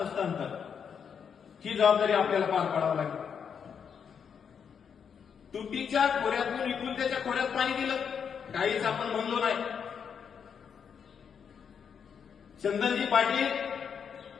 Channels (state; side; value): quieter; right; 7.1 dB